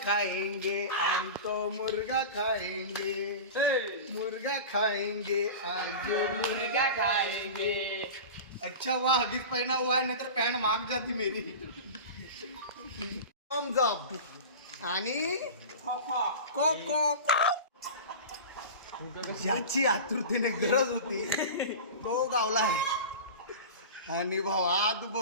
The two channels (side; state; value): both; inverted; correlation -0.30